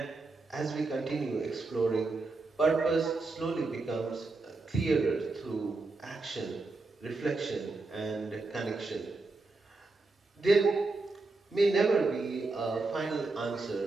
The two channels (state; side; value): quieter; left; 3.5 dB